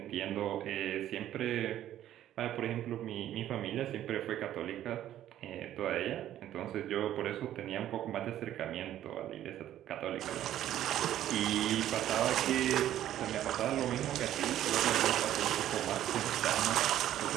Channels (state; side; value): quieter; left; 12.2 dB